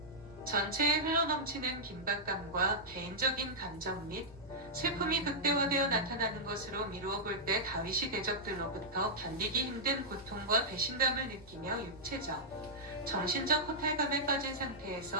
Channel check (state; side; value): noise; right; hum, 23 dB below the sound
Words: 전체에 흘러넘치는 긴박감과 개인적인 감정 및 슬픔이 극대화되어 나타나는 것으로 미루어 볼 때 다윗이 대적들로부터 견디기 힘든 고통과 배신감을 느끼며 육체적, 정신적 허탈감에 빠진